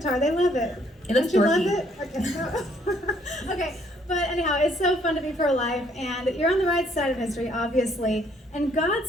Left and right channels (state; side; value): normal; both; correlation 0.66